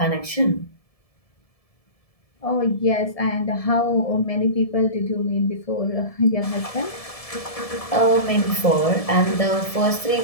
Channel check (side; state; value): right; late; 1.7 ms